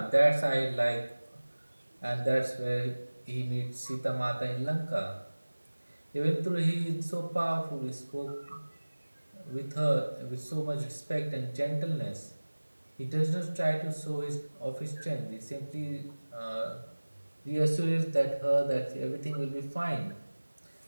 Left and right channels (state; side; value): inverted; both; correlation -1.00